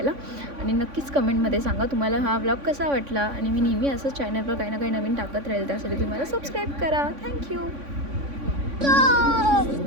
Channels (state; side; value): late; left; 3.5 ms